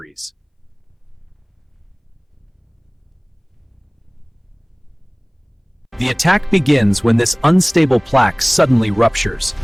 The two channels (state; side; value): identical; both; correlation 1.00